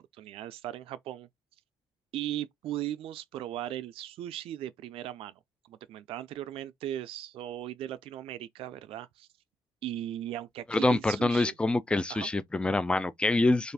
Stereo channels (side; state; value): both; normal; correlation 0.79